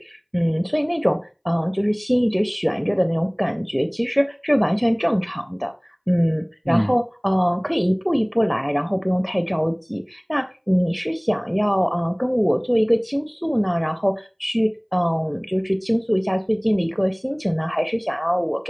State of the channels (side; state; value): both; identical; correlation 1.00